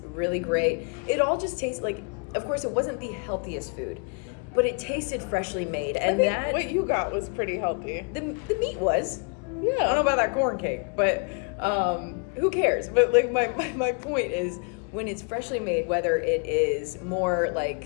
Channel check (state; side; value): quieter; right; 37.3 dB